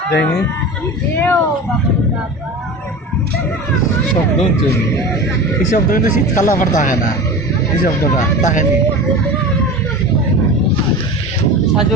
দেখনি শব্দ হচ্ছে এই শব্দ কিন্তু শীতকালে আবার থাকে না এই শব্দটা থাকেনি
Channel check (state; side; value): normal; both; correlation 0.31